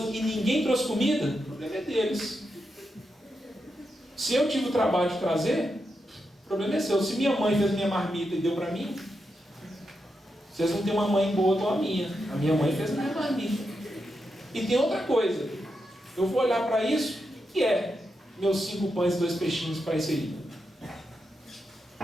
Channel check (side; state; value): both; normal; correlation 0.86